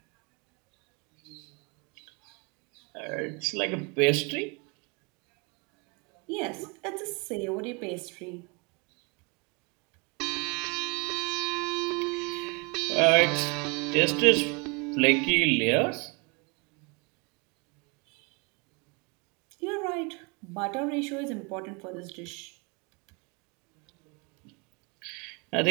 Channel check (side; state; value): left; quieter; 31.2 dB